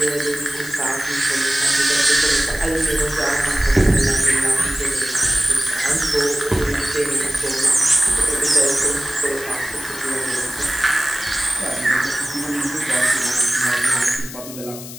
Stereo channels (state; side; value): noise; left; hiss, 13 dB below the sound